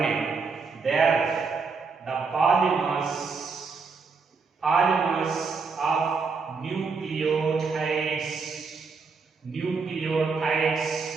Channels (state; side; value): quieter; left; 4.8 dB